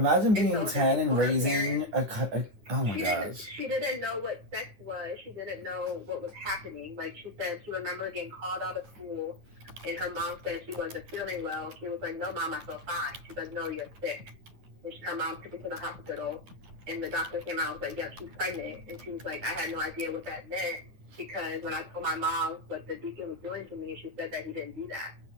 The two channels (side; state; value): left; late; 10 ms